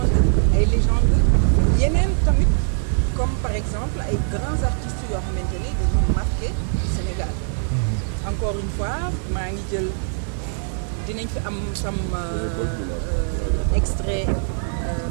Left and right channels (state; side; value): silent; left; digital silence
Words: ay légendes yeneen tamit comme par exemple ay grands artistes yoo xamante ni dañu marqué Sénégal. Encore une fois maa ngi jël dinañ fi am sam extrait